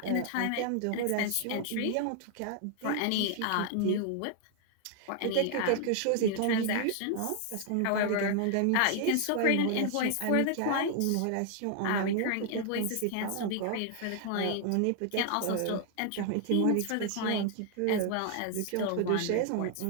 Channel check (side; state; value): both; different; correlation 0.00